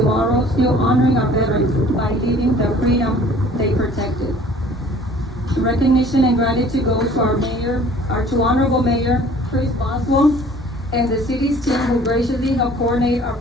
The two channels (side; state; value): both; normal; correlation 0.51